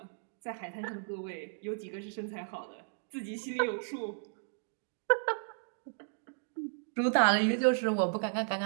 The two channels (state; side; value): silent; left; digital silence